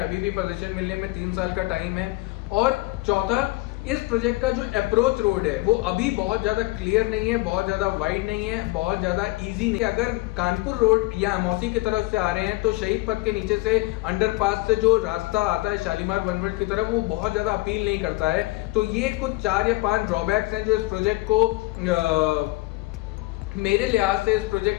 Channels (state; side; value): quieter; right; 21.9 dB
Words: भी पोजीशन मिलने में 3 साल का टाइम है। और चौथा, इस प्रोजेक्ट का जो अप्रोच रोड है वो अभी बहुत ज्यादा क्लियर नहीं है, बहुत ज्यादा वाइड नहीं है, बहुत ज्यादा इजी नहीं है। अगर कानपुर रोड या अमौसी की तरफ से आ रहे हैं तो शहीद पथ के नीचे से अंडरपास से जो रास्ता आता है शालीमार वन वर्ल्ड की तरफ, वो बहुत ज्यादा अपील नहीं करता है। तो ये कुछ 4 या 5 ड्रॉबैक्स हैं जो इस प्रोजेक्ट को मेरे लिहाज से इस